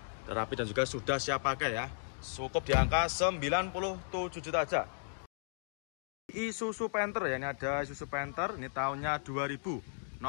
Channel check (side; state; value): right; silent; digital silence